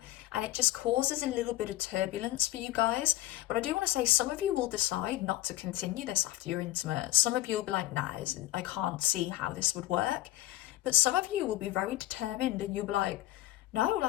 And it just causes a little bit of turbulence for you guys. But I do want to say some of you will decide not to continue this after you're intimate. Some of you will be like, nah, I can't see how this would work. But some of you will be very determined and you'll be like, no,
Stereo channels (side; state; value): right; quieter; 15.7 dB